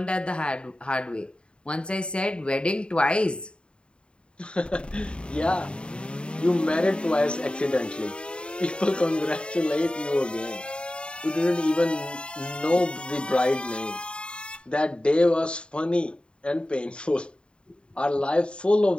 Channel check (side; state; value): right; late; 0.053 ms